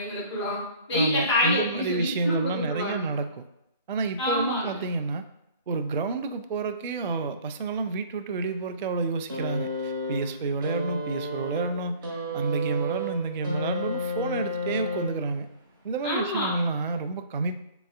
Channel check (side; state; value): both; inverted; correlation -0.49